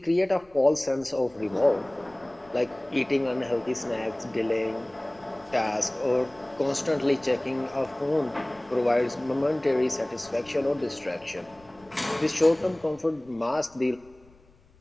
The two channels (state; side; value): noise; left; rumble, 29 dB below the sound